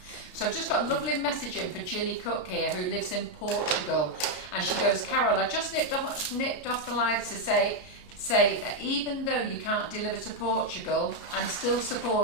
So I've just got a lovely message in for Gilly Cook here, who lives in Portugal, and she goes, Carol, I just nipped off the live to say that even though you can't deliver to Portugal, I'm still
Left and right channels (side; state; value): right; late; 33 ms